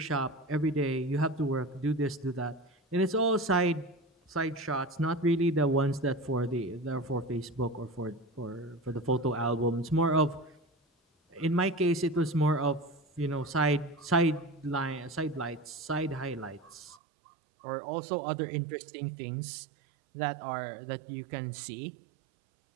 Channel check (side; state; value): left; drops out; at 17.0 s